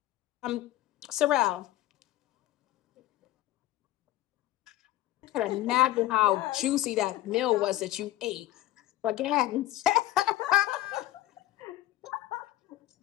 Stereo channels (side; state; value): right; quieter; 14.9 dB